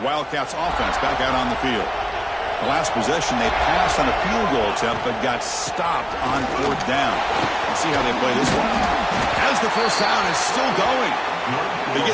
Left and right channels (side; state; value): both; identical; correlation 1.00